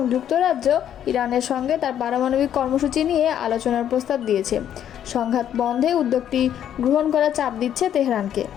যুক্তরাজ্য ইরানের সঙ্গে তার পারমাণবিক কর্মসূচি নিয়ে আলোচনার প্রস্তাব দিয়েছে। সংঘাত বন্ধে উদ্যোগটি গ্রহণ করার চাপ দিচ্ছে তেহরানকে।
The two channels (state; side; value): quieter; right; 10.1 dB